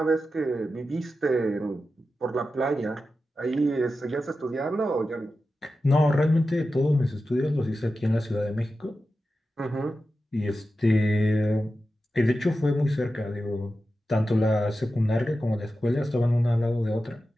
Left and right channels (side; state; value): both; normal; correlation 0.92